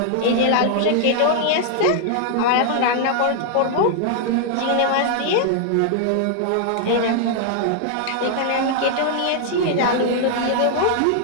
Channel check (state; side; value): different; both; correlation -0.01